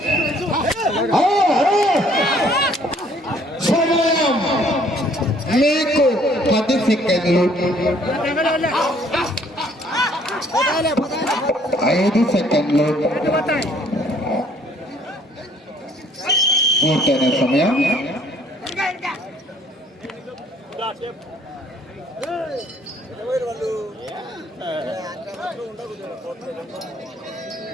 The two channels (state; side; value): normal; both; correlation 0.61